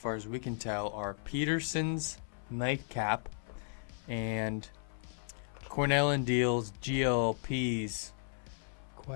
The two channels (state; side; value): silent; right; 54 dB below the other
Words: as we can tell, are Peterson's Nightcap and Cornell & Deal's GLP's